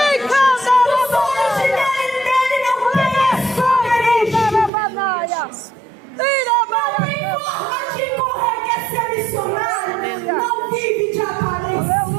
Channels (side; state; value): left; drops out; at 4.7 s